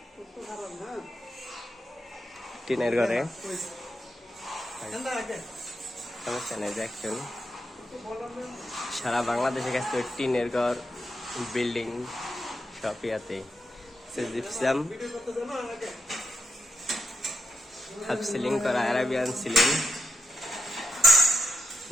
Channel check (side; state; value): both; normal; correlation 0.86